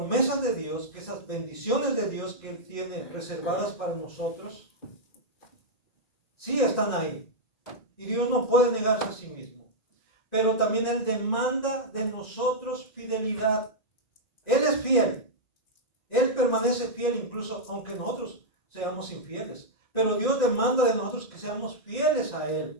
de Dios, que esas bendiciones de Dios que Él tiene reservadas para nosotros, sí están ahí. Y Dios no puede negarse a sí mismo. Pero también Él demanda de nosotros fidelidad. Él es fiel. Él permanece fiel incluso aunque nosotros seamos infieles. Pero Dios demanda de nosotros que seamos fieles a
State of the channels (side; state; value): right; late; 1.6 ms